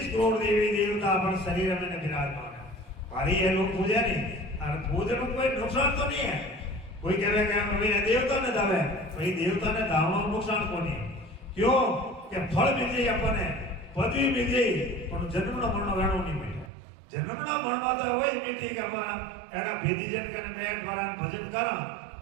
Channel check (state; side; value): drops out; left; at 16.7 s